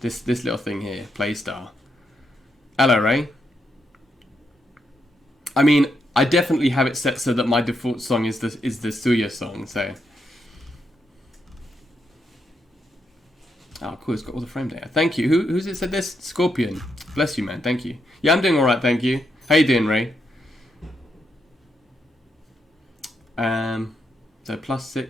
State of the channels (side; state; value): both; normal; correlation 0.81